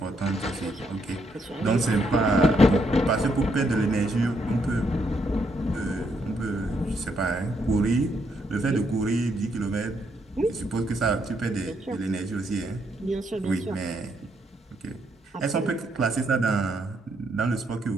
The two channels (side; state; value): both; normal; correlation 0.75